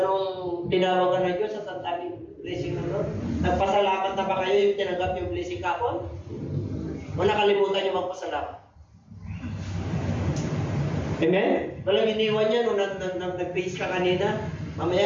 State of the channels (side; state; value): both; identical; correlation 1.00